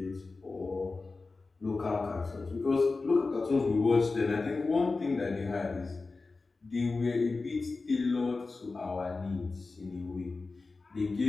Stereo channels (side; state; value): right; quieter; 3.8 dB